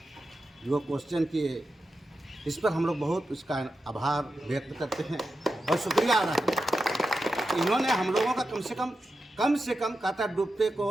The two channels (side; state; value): both; normal; correlation 0.89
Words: जो क्वेश्चन किए, इस पर हम लोग बहुत उसका आभार व्यक्त करते हैं और शुक्रिया अदा करते हैं। इन्होंने हम लोगों का कम से कम कहता डूबते